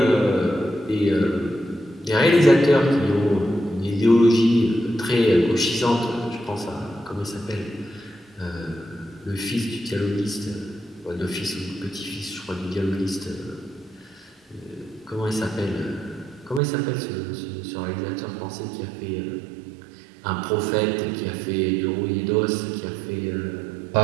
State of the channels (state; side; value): drops out; left; at 16.6 s